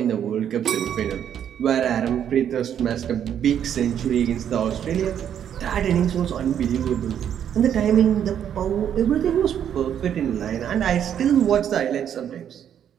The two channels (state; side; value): quieter; left; 9.3 dB